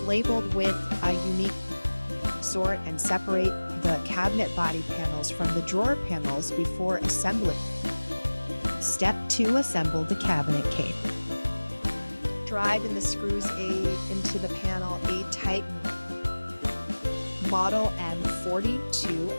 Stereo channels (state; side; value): inverted; both; correlation -1.00